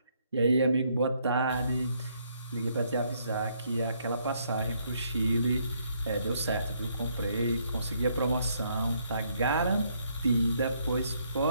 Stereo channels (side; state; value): both; inverted; correlation -0.71